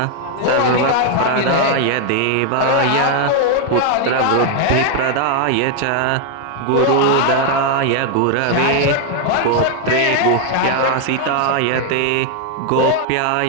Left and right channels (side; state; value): both; different; correlation 0.01